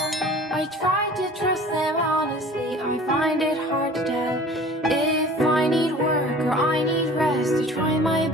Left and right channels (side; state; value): both; normal; correlation 0.45